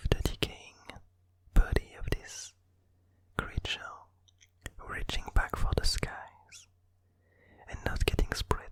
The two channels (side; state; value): both; identical; correlation 1.00